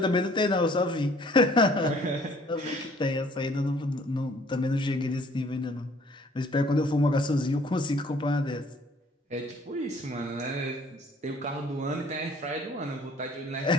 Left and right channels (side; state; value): both; normal; correlation 0.57